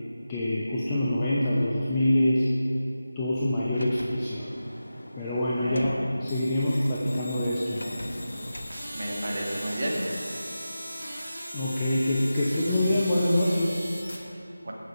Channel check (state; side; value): inverted; both; correlation -0.92